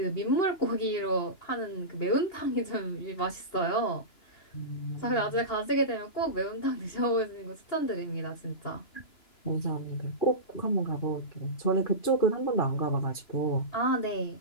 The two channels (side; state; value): right; late; 2.9 ms